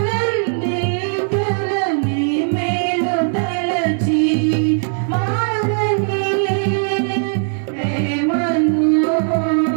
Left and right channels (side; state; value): left; silent; digital silence